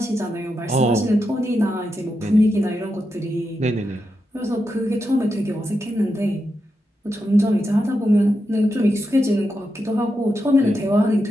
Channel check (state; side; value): normal; both; correlation 0.86